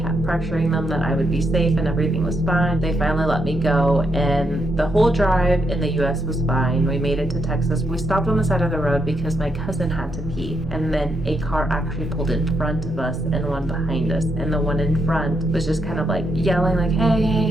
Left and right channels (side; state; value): both; normal; correlation 0.79